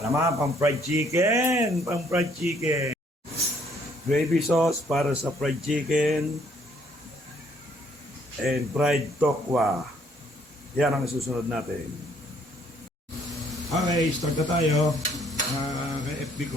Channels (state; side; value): normal; both; correlation 0.65